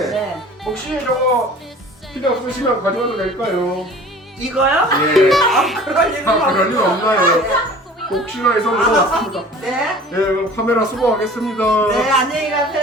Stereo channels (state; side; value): normal; both; correlation 0.45